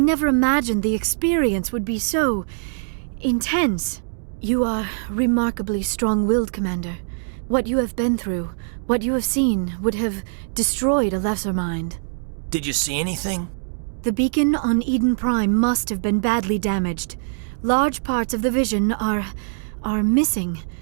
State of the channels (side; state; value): left; silent; digital silence